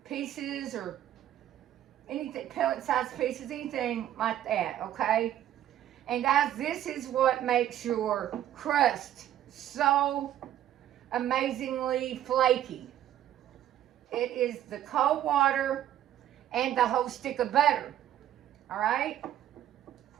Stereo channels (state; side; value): quieter; left; 11.9 dB